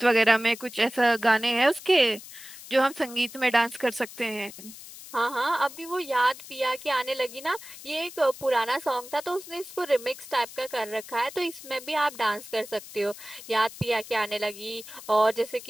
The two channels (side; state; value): left; noise; hiss, 15 dB below the sound